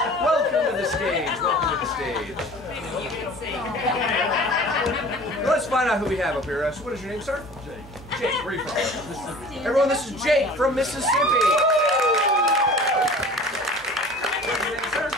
Welcome to the stage. Welcome to the stage. Let's find out who we have up here. What is your name, sir? Jake. Jake, where are you from? Everyone, this is Jake from Mississippi. What's your name, sir?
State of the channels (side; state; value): both; normal; correlation 0.43